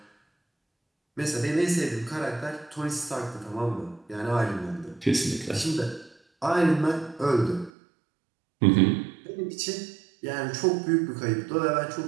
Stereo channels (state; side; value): drops out; left; at 7.7 s